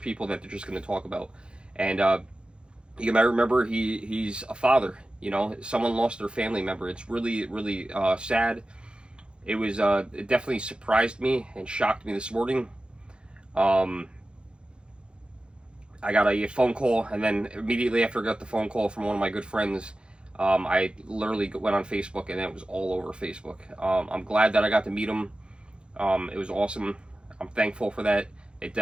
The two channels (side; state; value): left; late; 0.054 ms